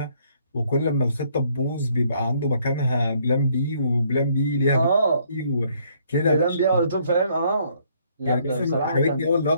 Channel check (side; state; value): both; inverted; correlation -0.66